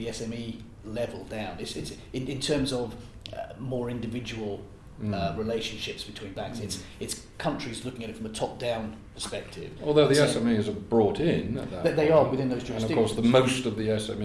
SME level down. It's in terms of more individual relationships between banks. It's countries looking at it from a top-down perspective. Although the SMEs are brought in at that they point. are within those jurisdictions. And of course, most of the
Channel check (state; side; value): identical; both; correlation 1.00